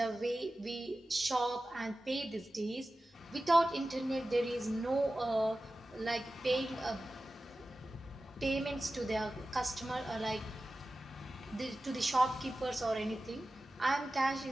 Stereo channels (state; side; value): normal; both; correlation 0.95